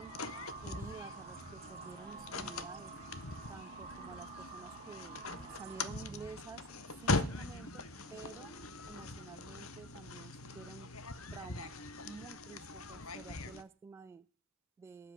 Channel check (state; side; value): normal; both; correlation 0.30